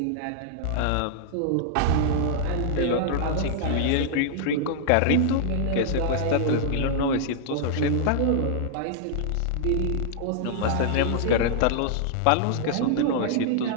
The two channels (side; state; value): both; different; correlation -0.01